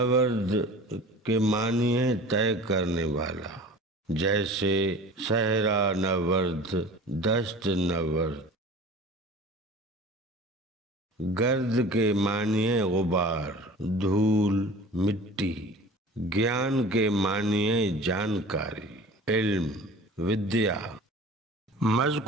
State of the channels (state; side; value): normal; both; correlation 0.41